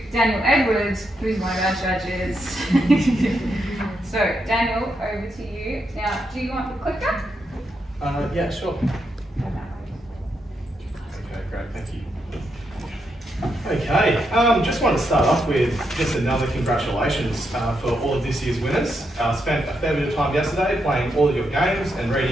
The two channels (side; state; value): both; normal; correlation 0.82